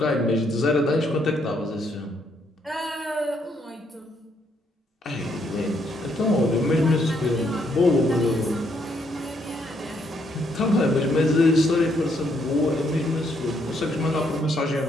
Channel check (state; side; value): normal; both; correlation 0.73